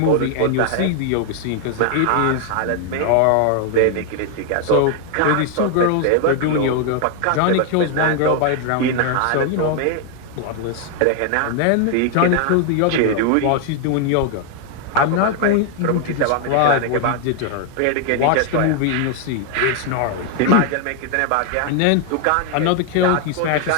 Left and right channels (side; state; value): both; different; correlation 0.00